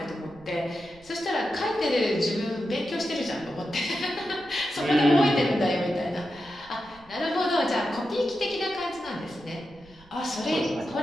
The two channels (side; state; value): right; noise; rumble, 25 dB below the sound